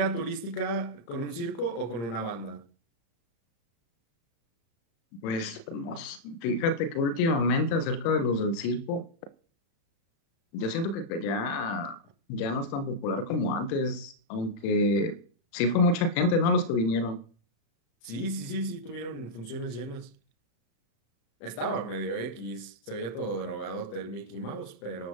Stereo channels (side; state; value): right; late; 35 ms